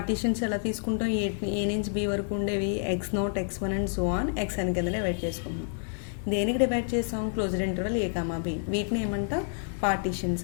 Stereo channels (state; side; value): silent; right; 55 dB below the other